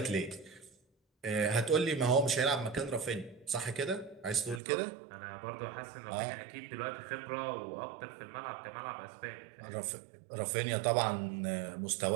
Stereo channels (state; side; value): drops out; left; at 4.6 s